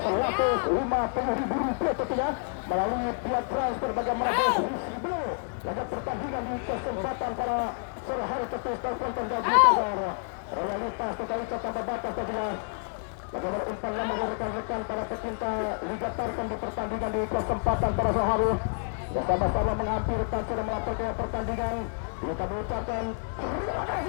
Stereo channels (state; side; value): silent; right; 59 dB below the other